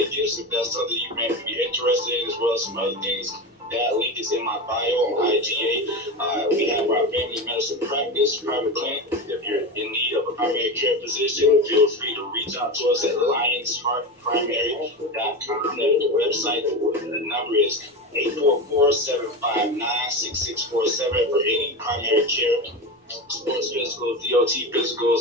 gifts. If that's something you may be interested in, as well as some other things, that link is in my bio on IGA. We have our family medicine practice private clinic. If you're in need of a primary care physician, feel free to reach out to us at lionsheartprimary.com. That's the website. The number is 844-759-6647 for any primary care, sports physicals, DOT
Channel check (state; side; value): normal; both; correlation 0.22